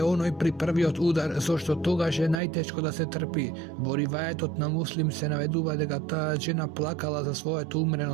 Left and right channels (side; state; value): left; drops out; at 2.4 s